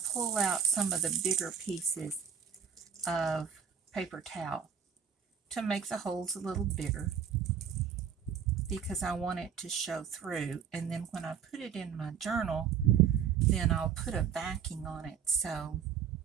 pull out some of the bigger pieces of paper towel to make the holes a little bigger because I want it to show through. And then when I put it in my journal, then I'll put a backing on it so,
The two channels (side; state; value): left; quieter; 7.7 dB